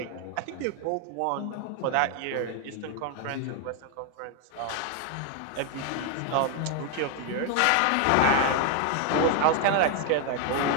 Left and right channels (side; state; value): both; different; correlation 0.01